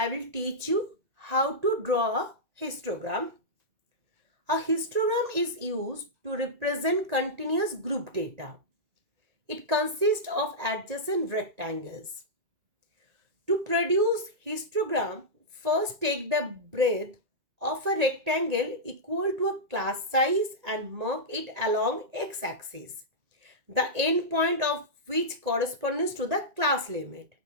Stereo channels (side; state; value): left; late; 1.9 ms